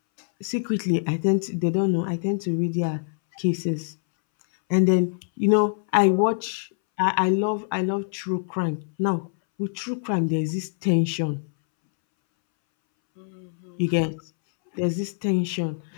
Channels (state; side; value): silent; right; 62 dB below the other